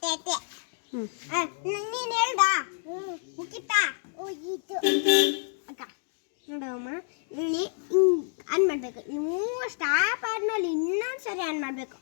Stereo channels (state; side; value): silent; right; digital silence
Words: ನೀನು ಹೇಳ್ದ ಮುಗಿತಾ ಹೋಗಿತ್ತು ಅಕ್ಕ ನೋಡಮ್ಮ. ಇಲ್ಲಿ ಆನ್ ಮಾಡಬೇಕು. ನೀವು ಸ್ಟಾಪ್ ಆದ್ಮೇಲೆ ಇನ್ನೊಂದು ಸರಿ ಆನ್ ಮಾಡಬೇಕು.